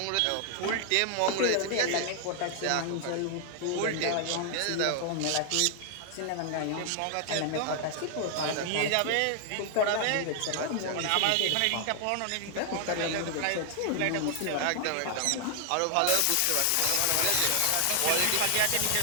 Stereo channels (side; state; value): both; different; correlation 0.00